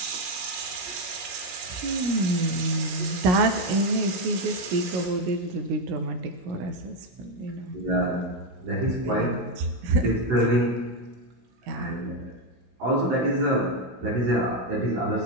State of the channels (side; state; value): left; late; 17 ms